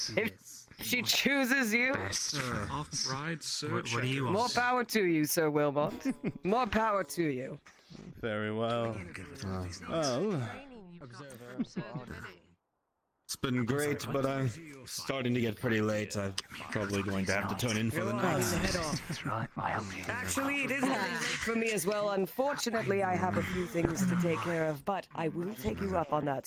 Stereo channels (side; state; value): both; identical; correlation 1.00